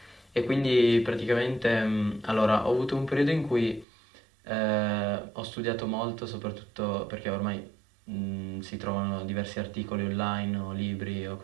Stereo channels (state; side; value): drops out; left; at 3.9 s